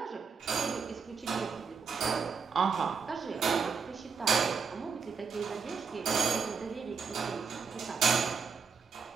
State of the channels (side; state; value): left; quieter; 5.6 dB